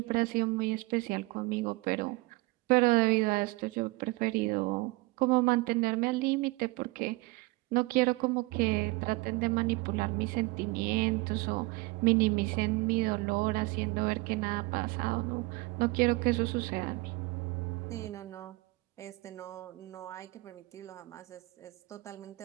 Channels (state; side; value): quieter; left; 23.4 dB